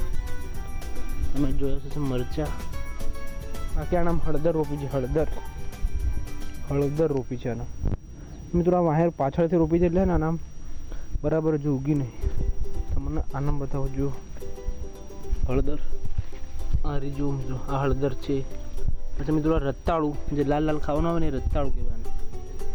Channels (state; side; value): identical; both; correlation 1.00